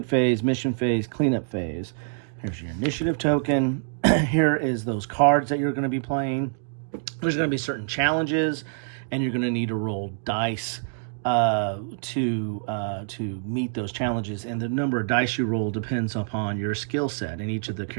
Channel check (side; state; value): left; silent; digital silence